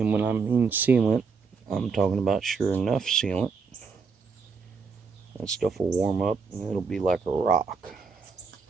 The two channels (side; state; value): left; quieter; 5.1 dB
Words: when I mean sealant, I'm talking about Sure Enough sealant. That stuff will warm up and it'll be like a rock.